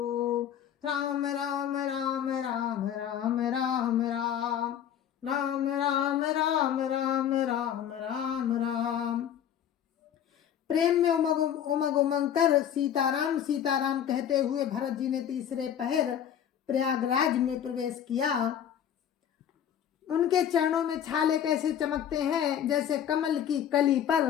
राम राम राम राम राम राम राम राम राम राम राम राम राम राम। प्रेम में उमग उमंग कर सीताराम सीताराम कहते हुए भरत जी ने तीसरे पहर प्रयागराज में प्रवेश किया। उनके चरणों में छाले कैसे चमकते हैं, जैसे कमल की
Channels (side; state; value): right; quieter; 9.5 dB